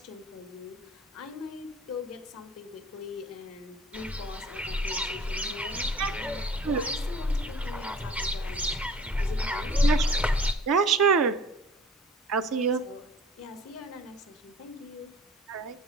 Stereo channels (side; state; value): both; normal; correlation 0.48